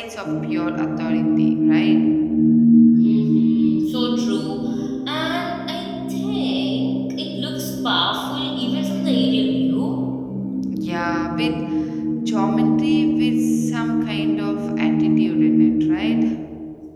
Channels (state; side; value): identical; both; correlation 1.00